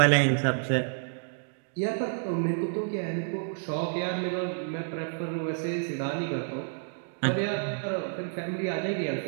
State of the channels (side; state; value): left; silent; digital silence